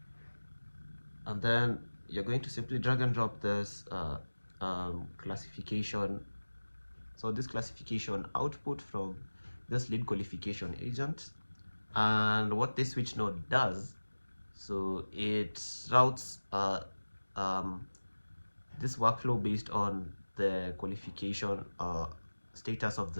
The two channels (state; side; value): inverted; both; correlation -1.00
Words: and then you're going to simply drag and drop this classification. So this classification output from this lead qualification agent, and what this switch node does, so it routes this workflow based on the qualification status of